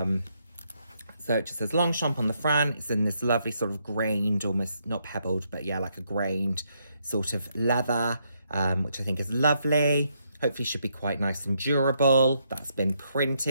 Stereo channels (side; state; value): both; inverted; correlation -0.76